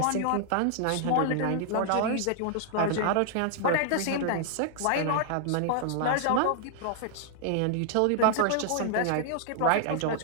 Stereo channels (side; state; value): both; different; correlation -0.01